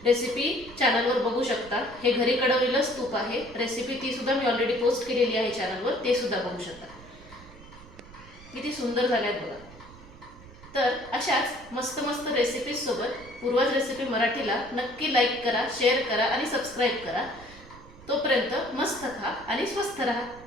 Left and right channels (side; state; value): right; noise; rumble, 20 dB below the sound